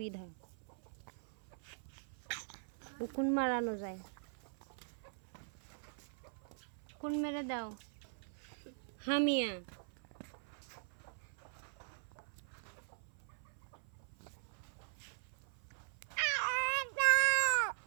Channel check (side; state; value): left; silent; 50 dB below the other